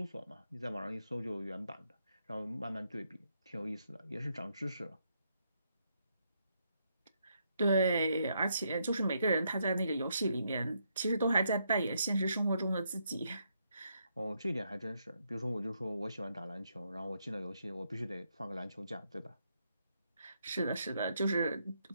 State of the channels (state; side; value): inverted; both; correlation -0.77